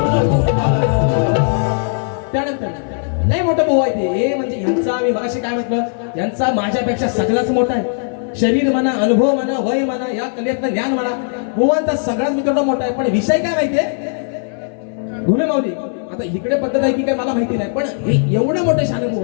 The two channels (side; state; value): right; silent; 59 dB below the other